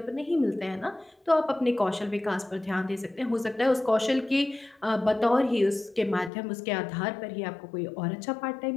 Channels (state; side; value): drops out; right; at 6.3 s